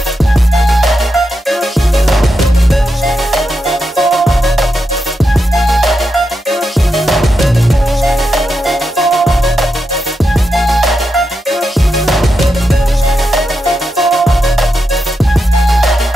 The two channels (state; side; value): normal; both; correlation 0.86